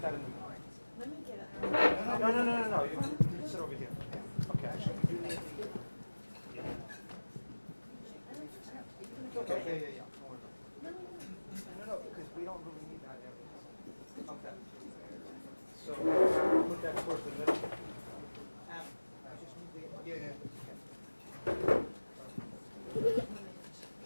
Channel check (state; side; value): inverted; both; correlation -1.00